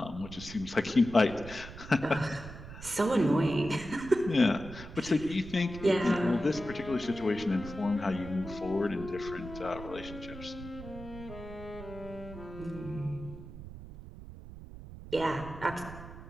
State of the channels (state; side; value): noise; right; rumble, 13 dB below the sound